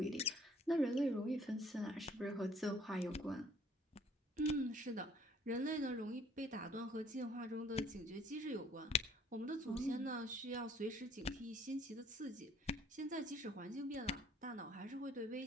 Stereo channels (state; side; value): normal; both; correlation 0.59